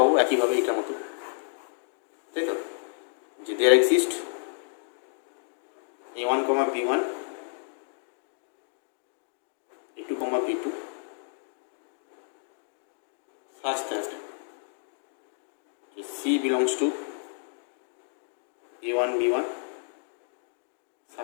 একইভাবে এটার মতো, তাই তো, যে there exist A1, B1, A2, B2 such that C belongs to A1, B1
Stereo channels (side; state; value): right; silent; digital silence